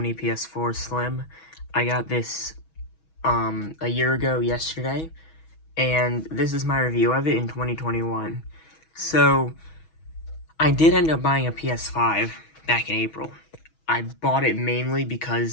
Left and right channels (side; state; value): right; late; 6.2 ms